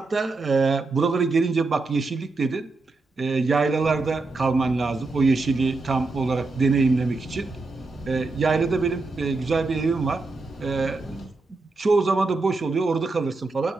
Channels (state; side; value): quieter; left; 3.6 dB